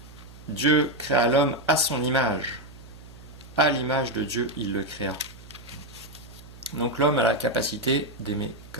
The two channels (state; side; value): noise; right; hum, 19 dB below the sound